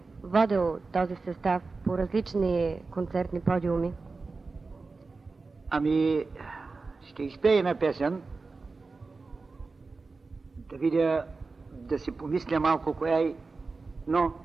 водил този състав по различни концертни подиуми. Ами, ще изпее една песен, да видя, да си помисля малко коя е, но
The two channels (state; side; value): quieter; left; 4.0 dB